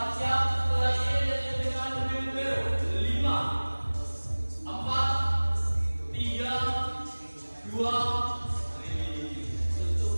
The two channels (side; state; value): both; inverted; correlation -1.00